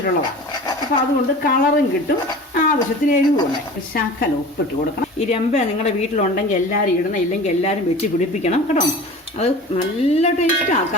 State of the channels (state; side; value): normal; both; correlation 0.38